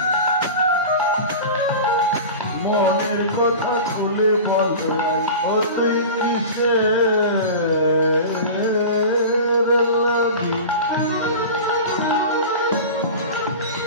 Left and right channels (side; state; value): both; inverted; correlation -0.32